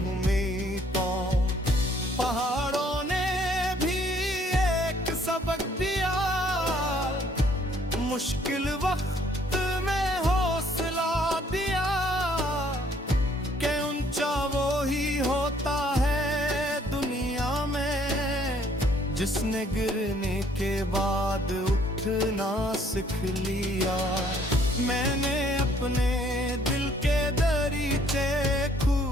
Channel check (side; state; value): both; normal; correlation 0.63